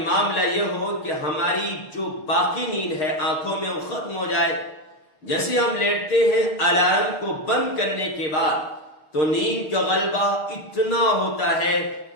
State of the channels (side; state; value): right; late; 6.5 ms